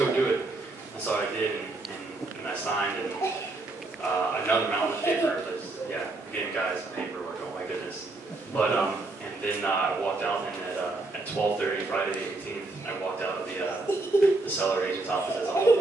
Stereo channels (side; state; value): left; quieter; 3.1 dB